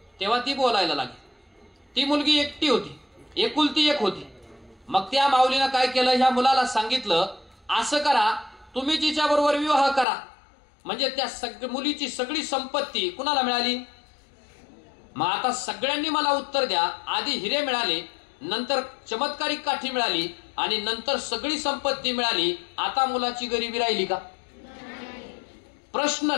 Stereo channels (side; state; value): right; drops out; at 10.1 s